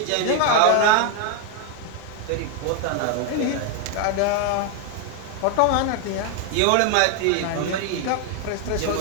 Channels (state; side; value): different; both; correlation 0.01